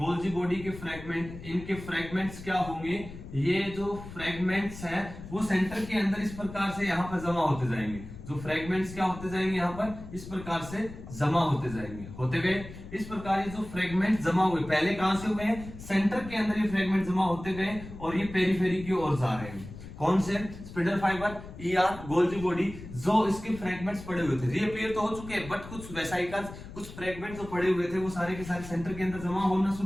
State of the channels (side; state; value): left; noise; rumble, 13 dB below the sound